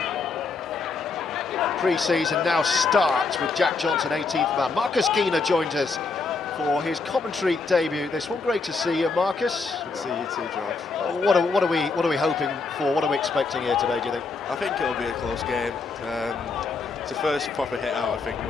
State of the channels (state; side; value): quieter; right; 4.3 dB